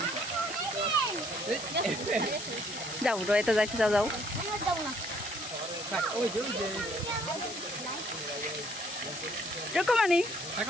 যাও রয়েতে যাইতে যাও যাও। রকমানি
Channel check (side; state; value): left; noise; hiss, 9 dB below the sound